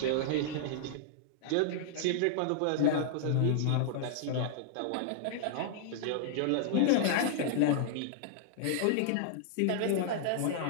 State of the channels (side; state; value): both; different; correlation -0.01